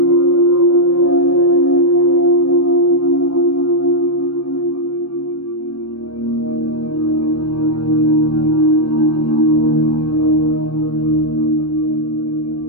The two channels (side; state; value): right; late; 0.78 ms